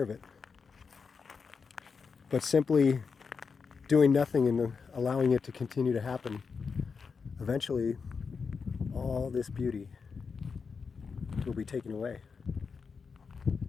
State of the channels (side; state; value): right; quieter; 5.4 dB